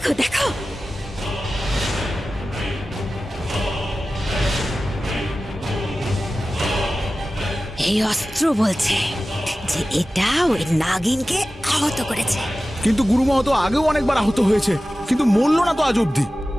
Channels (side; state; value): both; normal; correlation 0.95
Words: দেখো, এই অস্ত্র বলছে যে এটা ওই নাগিনকে আহত করেছে। কিন্তু গুরুমা তো আগেও অনেকবার আহত হয়েছে, কিন্তু মরল না তো আজ অব্দি।